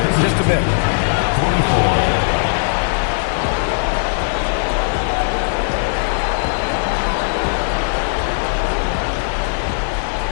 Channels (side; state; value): right; silent; 61 dB below the other